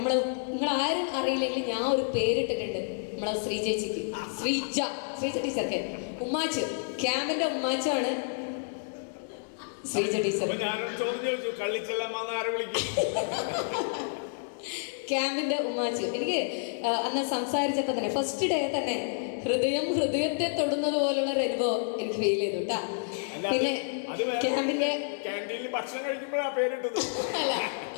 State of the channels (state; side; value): silent; right; 58 dB below the other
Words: നിങ്ങളാരും അറിയില്ലെങ്കിൽ ഞാൻ ഒരു പേരിട്ടിട്ടുണ്ട് നമ്മളെ ശ്രീ ചേച്ചിക്ക്, ശ്രീജ ടീച്ചർക്ക്. ഉമ്മാച്ചു, ക്യാമ്പിന്റെ ഉമ്മാച്ചാണ് ശ്രീജ ടീച്ചർ. ക്യാമ്പിന്റെ ഉമ്മാച്ചു. എനിക്ക് അന്ന് സംസാരിച്ചപ്പോൾ തന്നെ ഫസ്റ്റ് ഡേ തന്നെ ഹൃദയത്തെ തൊടുന്നത് പോലുള്ള ഒരു അനുഭവം എനിക്ക് ഫീൽ ചെയ്തു കേട്ടാ. പിന്നെ ക്യാമ്പിന്റെ ക്യാൻറ്റീനിൽ ഭക്ഷണം കഴിക്കുമ്പോഴാണ് പേരിട്ടത്. അല്ല,